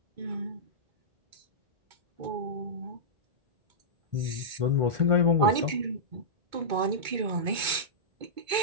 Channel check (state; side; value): late; left; 2.2 ms